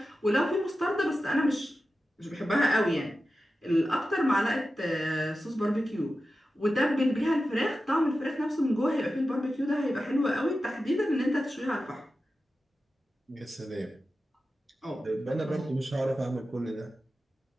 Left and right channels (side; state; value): both; normal; correlation 0.92